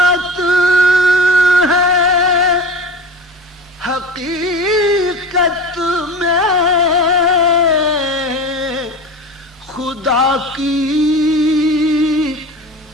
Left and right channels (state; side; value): normal; both; correlation 0.32